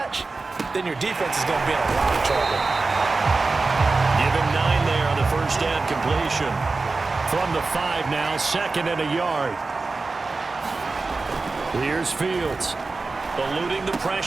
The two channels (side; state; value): left; quieter; 3.7 dB